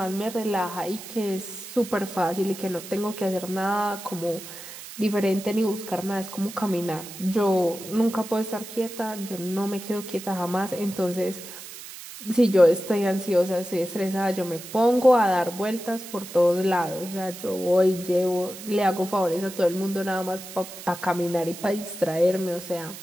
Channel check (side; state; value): right; noise; hiss, 13 dB below the sound